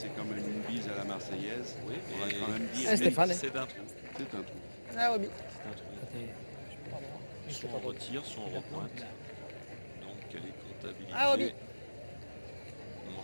quand même une bise à la Marseillaise. Oui, On va et quand même dire Ah, Stéphane. c'est d'un trou. c'est un trou. Ah, Roby. C'est un trou. Soit on retire, soit on repointe. Donc elle est comptabilisée. Ah, Roby.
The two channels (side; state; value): both; inverted; correlation -1.00